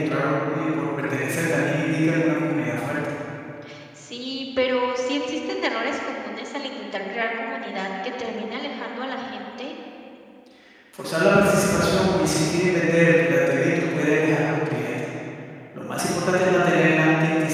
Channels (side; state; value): both; identical; correlation 1.00